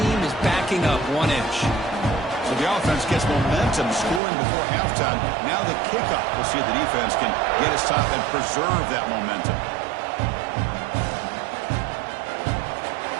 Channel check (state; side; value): drops out; left; at 4.2 s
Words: is backing up 1 inch. So the offense gets momentum, scoring before halftime. Now the kickoff. We'll see if the defense can get a stop and preserve that momentum.